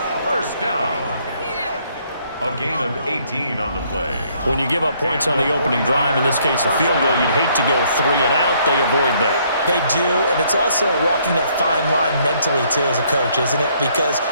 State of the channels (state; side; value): inverted; both; correlation -0.66